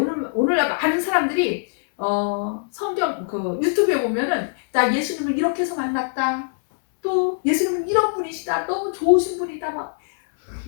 오늘 많은 사람들이 성경 그 유튜브에 보면은 나 예수님을 이렇게 해서 만났다. 또 예수님은 이런 분이시다. 너무 좋으신 분이다. 막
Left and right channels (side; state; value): right; silent; digital silence